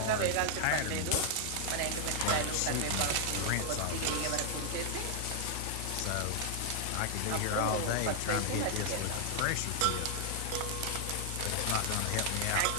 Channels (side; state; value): both; different; correlation 0.00